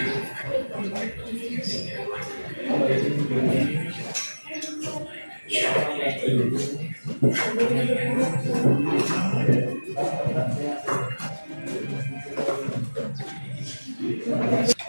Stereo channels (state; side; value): inverted; both; correlation -1.00